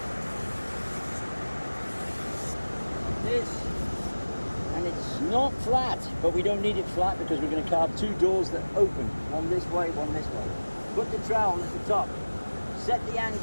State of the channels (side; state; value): both; inverted; correlation -1.00